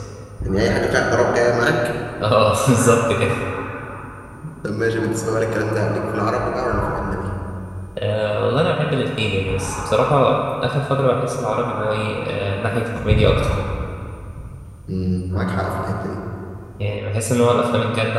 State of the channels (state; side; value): identical; both; correlation 1.00